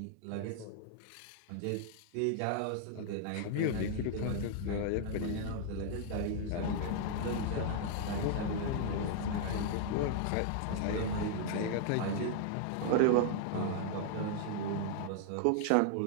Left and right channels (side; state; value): both; different; correlation -0.01